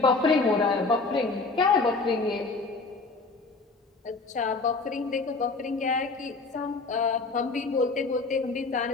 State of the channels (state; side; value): quieter; right; 3.9 dB